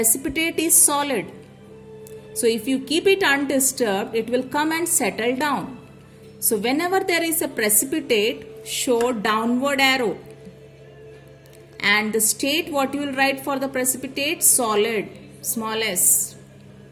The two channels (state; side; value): identical; both; correlation 1.00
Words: is solid. So, if you keep it undisturbed, it will come and settle down. So, whenever there is a precipitate, show downward arrow. And the state, what you will write for the precipitate? Solid, small s.